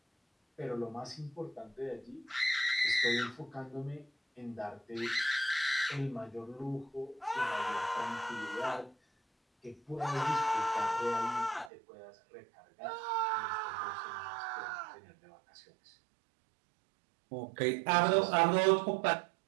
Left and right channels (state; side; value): drops out; left; at 11.7 s